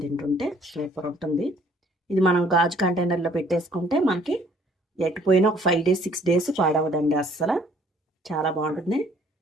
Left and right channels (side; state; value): both; normal; correlation 0.60